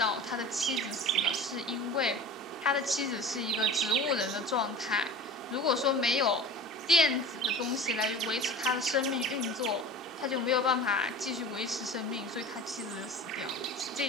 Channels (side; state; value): both; normal; correlation 0.36